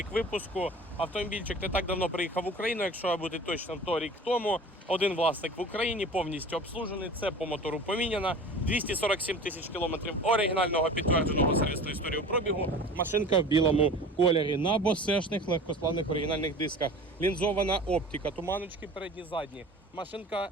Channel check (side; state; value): both; normal; correlation 0.39